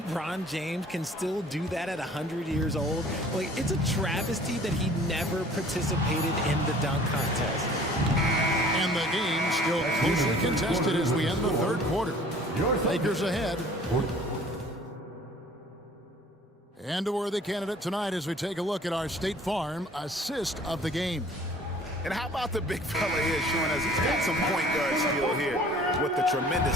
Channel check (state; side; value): normal; both; correlation 0.50